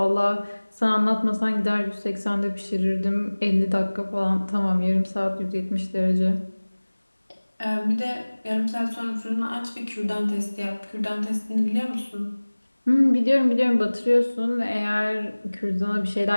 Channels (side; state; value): both; inverted; correlation -1.00